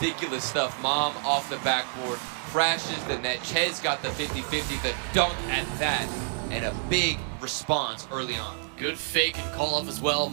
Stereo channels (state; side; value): silent; left; digital silence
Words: stuff. Mom off the backboard, crashes the net. Chez got the 50-50, the dunk at that, and a big response early on. Good fake and call off as well.